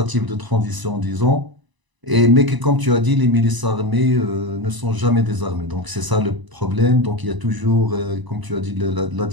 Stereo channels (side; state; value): left; late; 1.0 ms